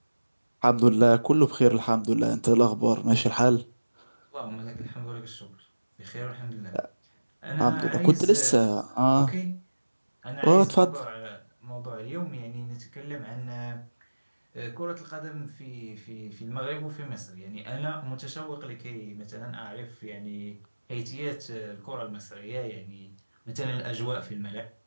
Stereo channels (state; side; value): inverted; both; correlation -1.00